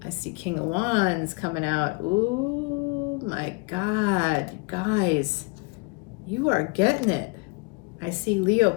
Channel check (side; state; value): right; quieter; 30.2 dB